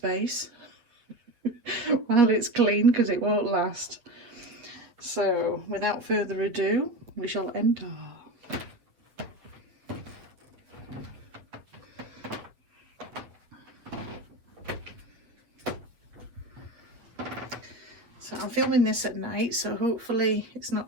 while it's clean, because it won't last. So without further ado, we shall enter. So I'm filming this at night, so hopefully it's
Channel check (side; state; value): left; late; 8.7 ms